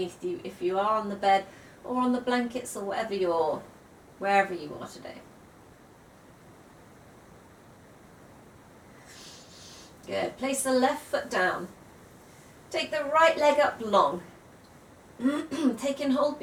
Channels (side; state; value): both; identical; correlation 1.00